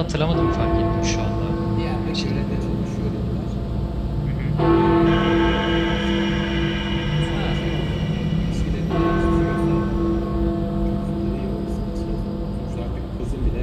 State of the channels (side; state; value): both; identical; correlation 1.00